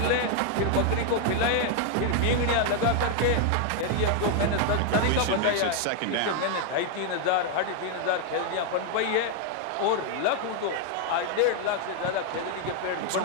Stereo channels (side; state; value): both; different; correlation 0.00